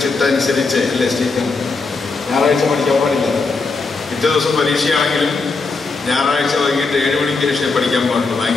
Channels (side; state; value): right; quieter; 4.1 dB